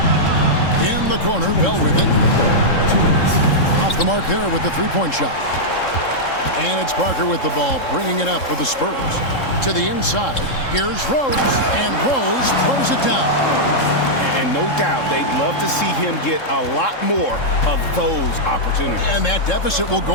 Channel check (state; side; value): late; right; 3.7 ms